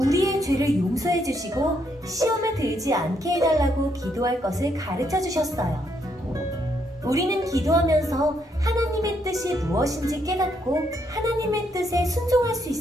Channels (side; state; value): both; normal; correlation 0.74